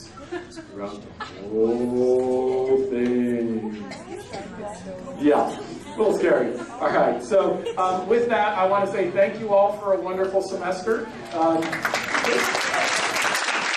throughout the whole thing. Yeah. A little scary. All right, so with that, I want to say thank you all for a wonderful semester.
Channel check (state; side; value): identical; both; correlation 1.00